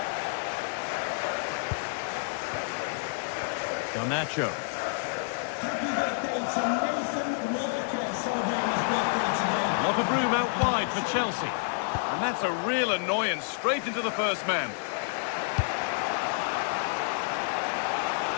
Garnacho. Lot of room out wide for Chelsea. And that's a real annoyance, straight into the first man.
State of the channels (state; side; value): silent; right; digital silence